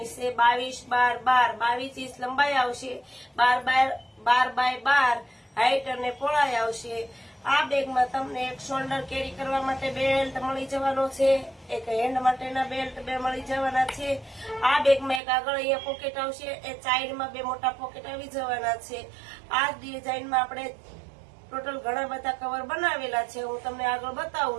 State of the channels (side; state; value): left; drops out; at 15.2 s